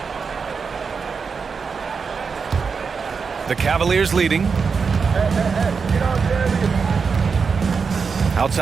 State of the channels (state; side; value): quieter; left; 5.4 dB